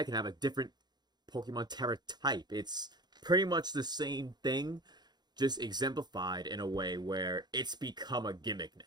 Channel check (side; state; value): left; late; 0.20 ms